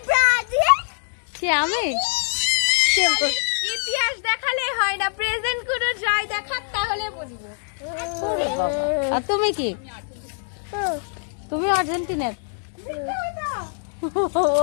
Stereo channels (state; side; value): silent; right; 63 dB below the other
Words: আমি ইতিহাস দেখালে হয় না, প্রেজেন্ট করে যাই দেখাক, তাহলে বুঝবো। আর তুমি কি? তুমি আর্জেন্টিনার? ও